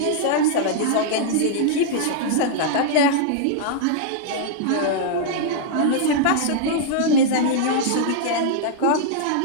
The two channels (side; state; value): both; different; correlation -0.01